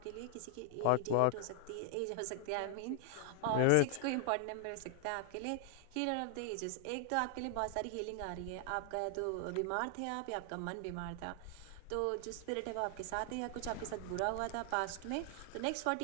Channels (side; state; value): both; different; correlation 0.00